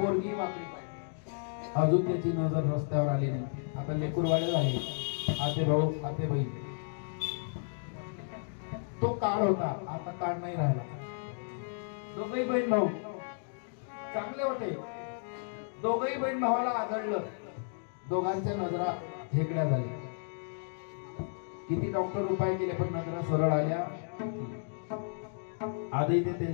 वाकडी पाहिजे. अजून त्याची नजर रस्त्यावर आली नाही. आता लेकरवाडे झाले, आते भाऊ आते बहीण. तो काळ होता, आता काळ नाही राहिला. दोघही बहीण भाऊ चांगले होते. दोघही बहीण भावाला आदळलं. दोघांच्या नजरा हेकड्या झाल्या. किती डॉक्टर उपाय केले पण नजरा सरळ आल्या. आजही ते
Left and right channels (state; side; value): silent; right; digital silence